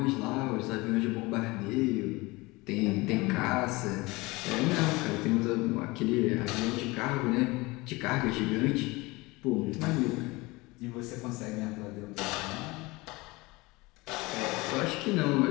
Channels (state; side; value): quieter; right; 22.9 dB